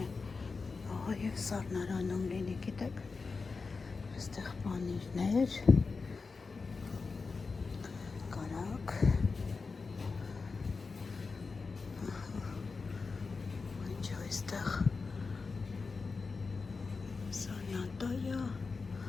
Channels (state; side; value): quieter; right; 4.4 dB